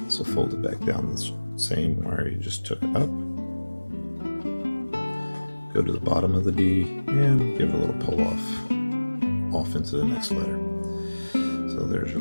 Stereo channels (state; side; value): inverted; both; correlation -1.00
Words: So fold it back down the same where you just took it up. Go to the bottom of the D and give it a little pull off into the next letter. So there's your